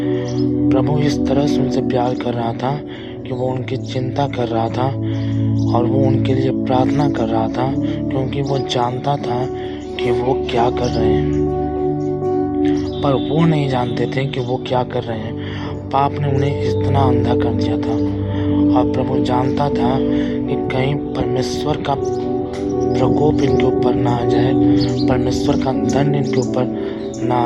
प्रभु इस तरह से उनसे प्यार कर रहा था कि वो उनकी चिंता कर रहा था और वो उनके लिए प्रार्थना कर रहा था, क्योंकि वो जानता था कि वो क्या कर रहे हैं, पर वो नहीं जानते थे कि वो क्या कर रहे हैं। पाप ने उन्हें इतना अंधा कर दिया था, और प्रभु जानता था कि कहीं परमेश्वर का प्रकोप इनके ऊपर ना आ जाए, परमेश्वर का दंड इनके ऊपर ना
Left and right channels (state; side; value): identical; both; correlation 1.00